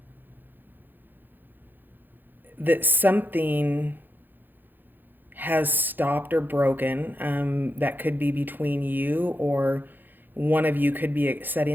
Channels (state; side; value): late; left; 0.090 ms